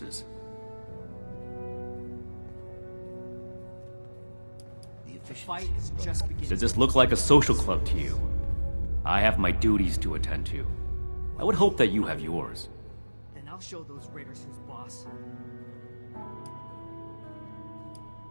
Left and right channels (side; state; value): both; inverted; correlation -1.00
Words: Does this look like a social club to you? I have my duties to attend to. I would hope that you have yours. Then I'll show those raiders who's boss.